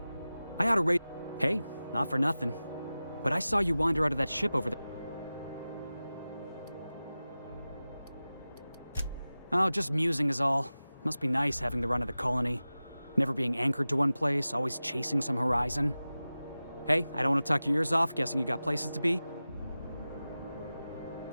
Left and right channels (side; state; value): both; inverted; correlation -0.96